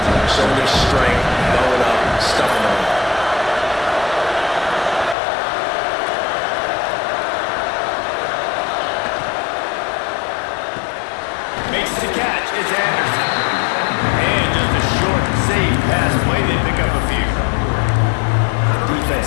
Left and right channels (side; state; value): right; drops out; at 5.2 s